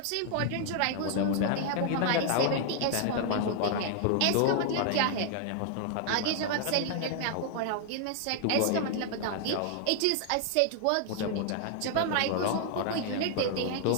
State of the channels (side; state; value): both; different; correlation 0.00